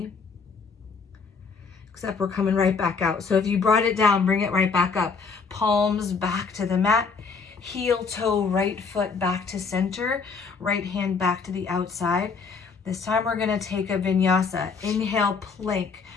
Except we're coming right back out. So if you brought it down, bring it right back up. Palms back to the mat. Heel toe, right foot back to center. Right hand back to the outside. This time we're gonna take a vinyasa. Inhale, plank,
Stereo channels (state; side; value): quieter; right; 5.1 dB